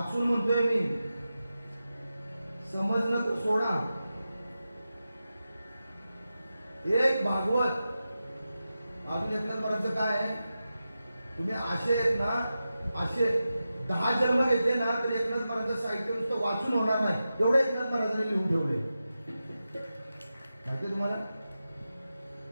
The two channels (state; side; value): inverted; both; correlation -0.92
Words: म्हणतोय मी, समजणं तर सोडा. एक भागवत अजून एकनाथ महाराजांचं काय आहे, तुम्ही असे आहेत ना, असे 10 जन्म घेतले ना तर एकनाथ महाराजांचं साहित्य नुसतं वाचून होणार नाही, एवढं एकनाथ महाराजांनी लिहून ठेवले. माहिती तुम्हाला,